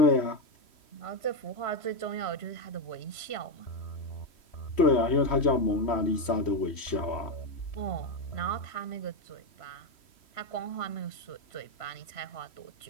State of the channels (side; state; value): right; late; 3.1 ms